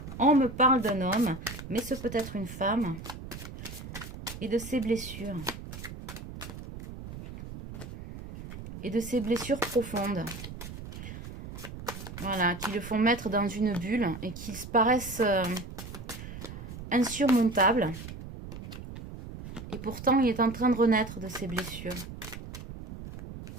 on me parle d'un homme, mais ce peut être une femme et de ses blessures. Et de ses blessures profondes. Voilà, qui le font mettre dans une bulle et qui paraissent insurmontables. Et pourtant, il est en train de renaître de ses blessures.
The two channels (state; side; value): noise; right; rumble, 11 dB below the sound